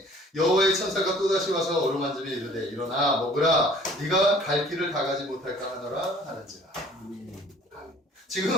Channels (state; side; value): normal; both; correlation 0.52